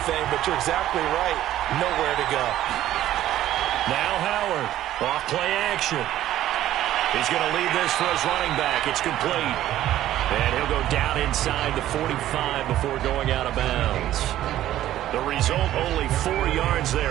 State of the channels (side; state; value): left; quieter; 13.1 dB